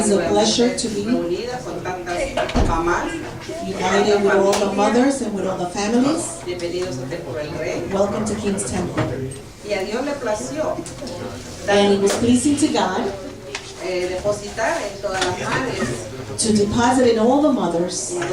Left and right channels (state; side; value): identical; both; correlation 1.00